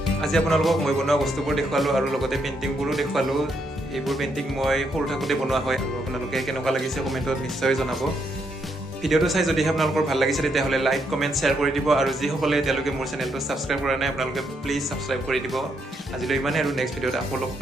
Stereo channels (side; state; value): both; normal; correlation 0.77